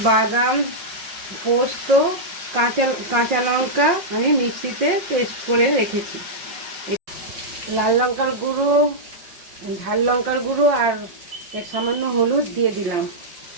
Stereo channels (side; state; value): left; late; 5.6 ms